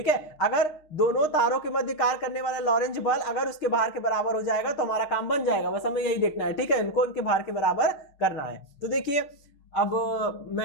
है। अगर दोनों तारों के मध्य कार्य करने वाला लॉरेंज बल अगर उसके भार के बराबर हो जाएगा तो हमारा काम बन जाएगा, बस हमें यही देखना है, ठीक है, इनको इनके भार के बराबर करना है। तो देखिए अब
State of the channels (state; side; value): late; right; 6.6 ms